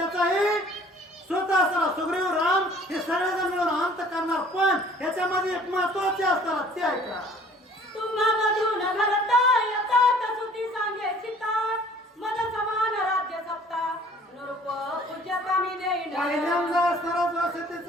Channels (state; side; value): normal; both; correlation 0.53